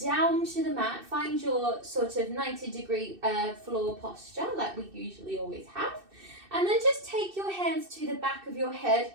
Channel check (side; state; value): left; late; 2.6 ms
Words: down to the mat. Find your sort of 90-degree floor posture like we usually always have. And then just take your hands to the back of your head